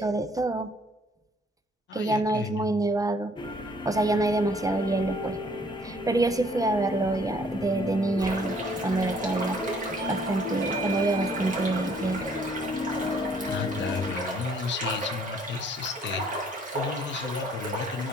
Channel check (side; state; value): both; normal; correlation 0.61